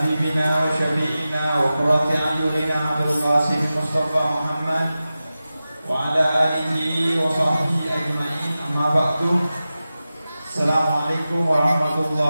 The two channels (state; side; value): inverted; both; correlation -0.94